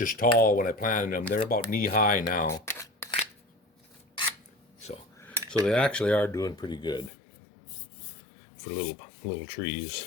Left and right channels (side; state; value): right; drops out; at 7.1 s